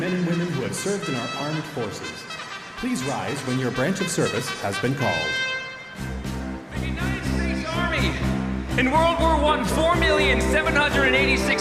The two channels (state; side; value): identical; both; correlation 1.00